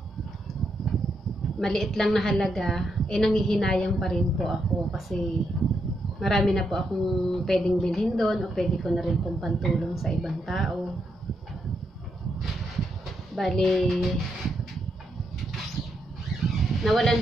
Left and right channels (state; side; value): normal; both; correlation 0.80